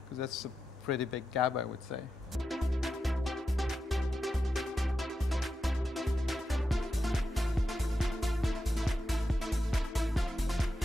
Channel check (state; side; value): normal; both; correlation 0.88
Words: because that's a pretty big gap, I would say.